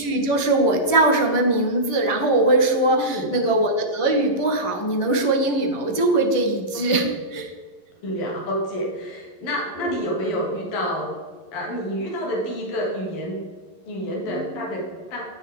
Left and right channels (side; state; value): right; late; 11 ms